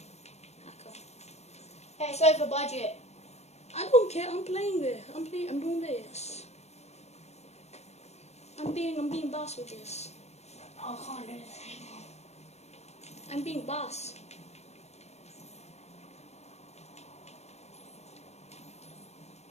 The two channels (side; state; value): right; late; 0.31 ms